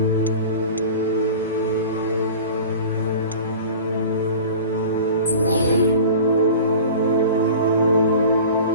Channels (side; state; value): both; inverted; correlation -0.39